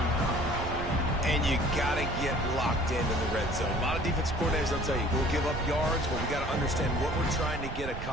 And you got to get locked into the red zone. A lot of defense coordinators, they'll tell you, we'll give up yards, but we got to understand what we're trying to get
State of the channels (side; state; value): right; noise; rumble, 7 dB below the sound